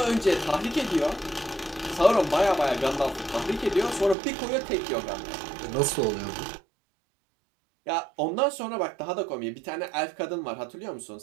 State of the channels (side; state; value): left; drops out; at 4.2 s